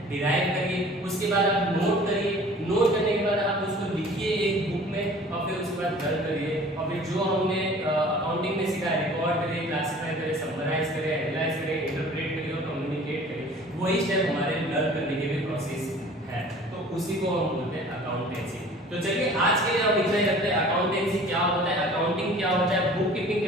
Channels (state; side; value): normal; both; correlation 0.47